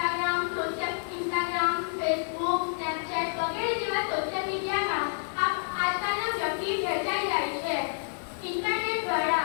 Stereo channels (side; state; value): right; silent; 55 dB below the other